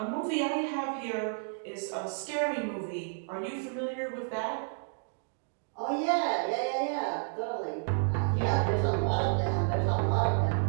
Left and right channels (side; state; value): left; silent; digital silence